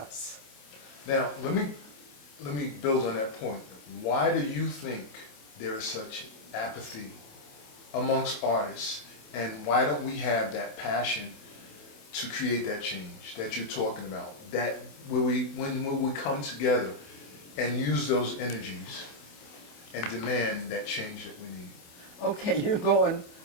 Now, let me build on that point. Why do you think there is such apathy amongst artists, and why don't we have that passion to create that change that you're talking about? That when we come together and use those energies and demand that change that we need. Okay, you're going.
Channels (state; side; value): late; right; 28 ms